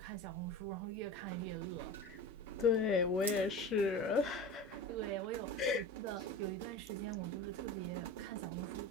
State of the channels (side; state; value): both; normal; correlation 0.31